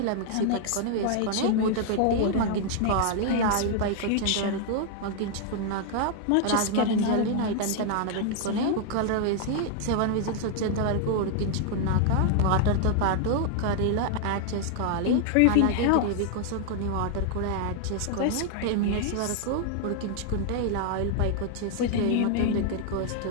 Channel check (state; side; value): different; both; correlation 0.00